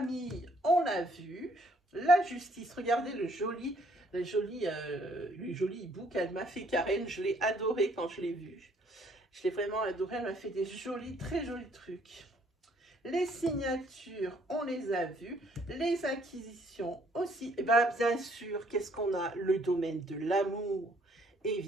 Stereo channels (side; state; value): both; normal; correlation 0.64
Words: on l'a vu. La justice, regardez le joli hibou qu'elle m'a fait Karen. Je l'ai adoré quand je l'ai vu. Je l'ai vraiment adoré. Elle m'a fait des jolis, très jolis trucs. Les signatures, on les a vues. Les acquisitions aussi. Et bien, bien sûr, qu'est-ce qu'on a? Le domaine de l'amour.